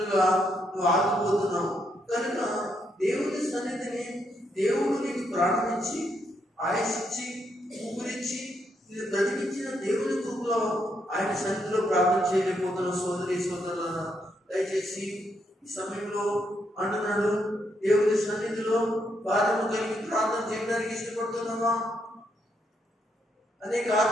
నువ్వు ఆగిపోతున్నావు. కనుక దేవుని సన్నిధిని దేవుడు నీకు ప్రారంభించి ఆయుషిచ్చి ఊపిరిచ్చి నేను బ్రతికించిన దేవుని కృపలో ఆయన సన్నిధిలో ప్రార్థన చేయలేకపోతున్న సోదరి సోదరులను దయచేసి ఈ సమయంలో అంటున్నాడు, దేవుని సన్నిధిలో భారము కలిగి ప్రార్థన చేయడానికి ఇష్టపడుతున్నావా? అనేక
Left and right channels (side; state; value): both; normal; correlation 0.77